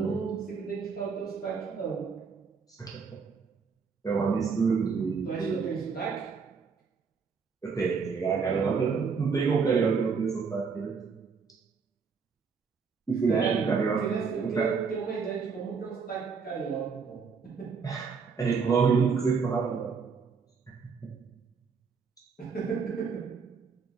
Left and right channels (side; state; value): left; quieter; 5.5 dB